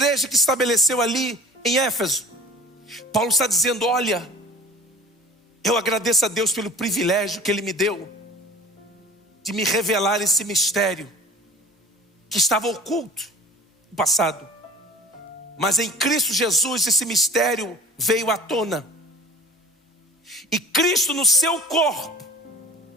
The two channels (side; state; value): both; normal; correlation 0.42